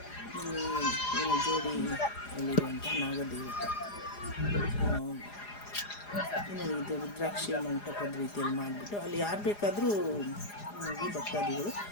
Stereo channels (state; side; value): late; right; 4.9 ms